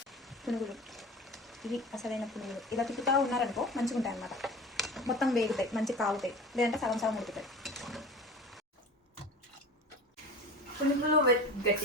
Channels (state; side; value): normal; both; correlation 0.35